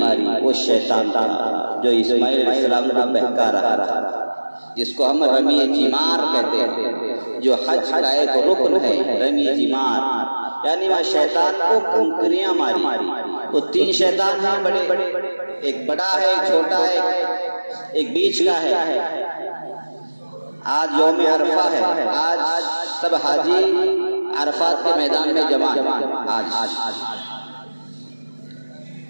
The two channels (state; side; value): inverted; both; correlation -1.00